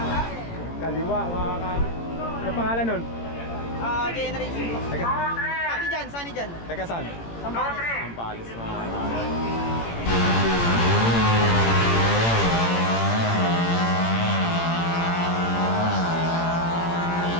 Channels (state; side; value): late; right; 18 ms